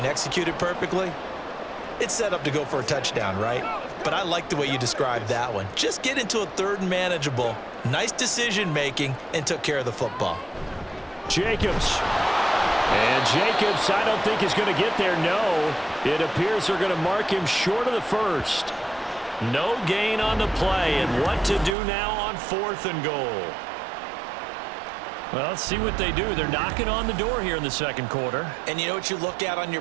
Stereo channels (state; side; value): drops out; left; at 21.8 s